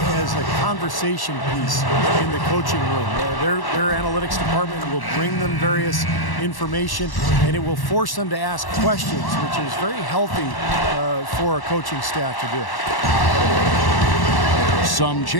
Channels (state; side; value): late; right; 1.1 ms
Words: a conversation piece in the coaching room. Their analytics department will bring them various information, and it will force them to ask questions, which is very healthy for a coaching staff to do. Some